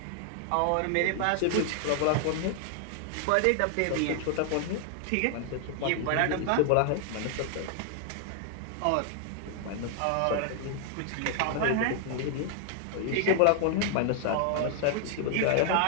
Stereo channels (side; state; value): both; different; correlation 0.00